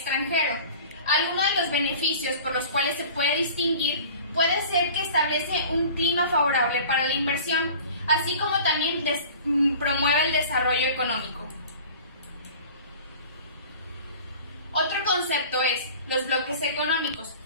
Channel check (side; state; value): both; inverted; correlation -0.43